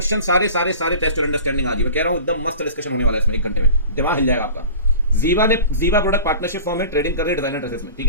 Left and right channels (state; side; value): inverted; both; correlation -0.39